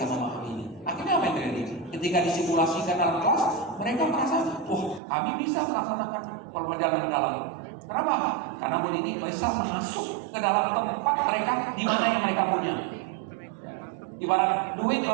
memahami ini. Akhirnya apa yang terjadi? Ketika disimulasikan dalam kelas, mereka merasa, wah kami bisa melaksanakan pelajaran mendalam. Kenapa? Karena Bu Nini bisa masuk ke dalam tempat mereka di mana yang mereka punya. Ibarat duit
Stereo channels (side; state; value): left; drops out; at 5.0 s